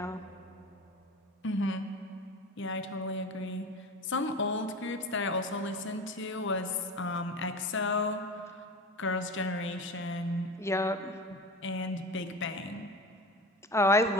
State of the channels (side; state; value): both; normal; correlation 0.31